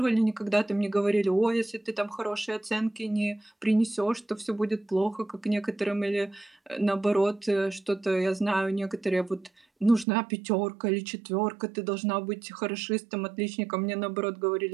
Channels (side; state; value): left; drops out; at 10.1 s